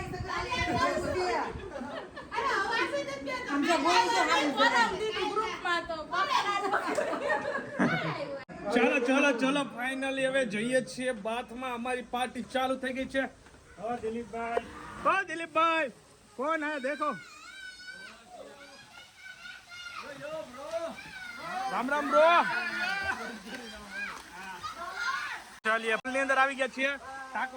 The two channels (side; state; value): both; identical; correlation 1.00